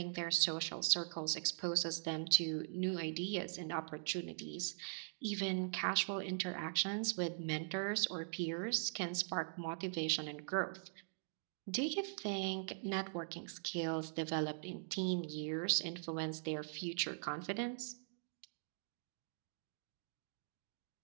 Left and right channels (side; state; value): left; silent; digital silence